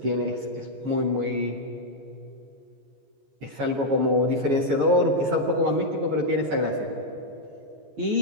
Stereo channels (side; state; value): left; late; 15 ms